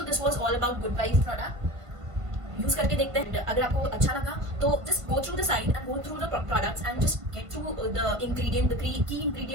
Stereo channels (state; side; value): late; left; 1.5 ms